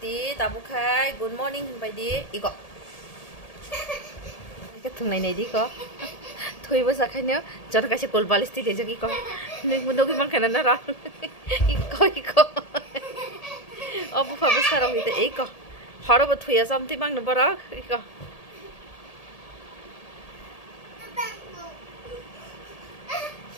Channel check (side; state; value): right; late; 1.8 ms